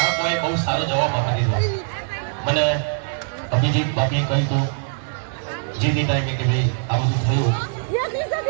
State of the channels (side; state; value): left; silent; digital silence